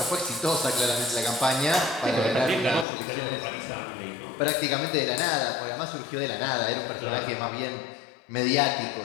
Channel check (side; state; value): right; drops out; at 2.9 s